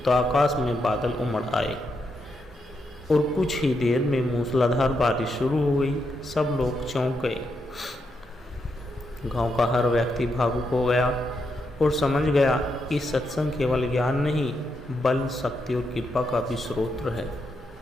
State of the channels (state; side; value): normal; both; correlation 0.82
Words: तो आकाश में बादल उमड़ आए और कुछ ही देर में मूसलाधार बारिश शुरू हो गई। सब लोग चौंक गए। गांव का हर व्यक्ति भावुक हो गया और समझ गया कि सत्संग केवल ज्ञान नहीं, बल, शक्ति और कृपा का भी स्रोत है।